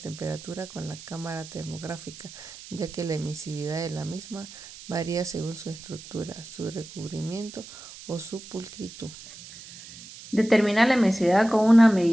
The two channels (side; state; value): right; noise; hiss, 16 dB below the sound